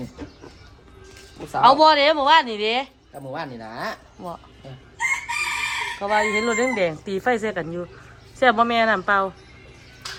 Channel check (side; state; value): both; identical; correlation 1.00